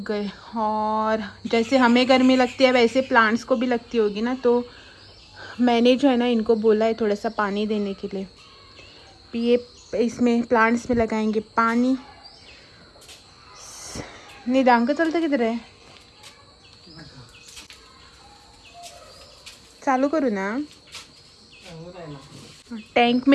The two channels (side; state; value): both; identical; correlation 1.00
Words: गए। और जैसे हमें गर्मी लगती है वैसे प्लांट्स को भी लगती होगी ना, तो मैंने जो है ना इनको बोला है थोड़ा सा पानी देने के लिए। पिए इसमें प्लांट्स में लगाएंगे पानी। निदांक चलता किधर है? चालू करूँ ना? टैंक